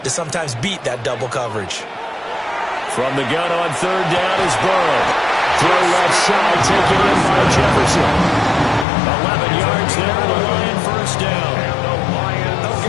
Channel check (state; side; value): drops out; right; at 8.8 s